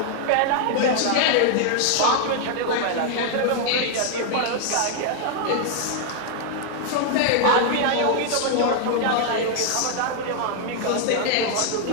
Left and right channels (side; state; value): both; different; correlation 0.00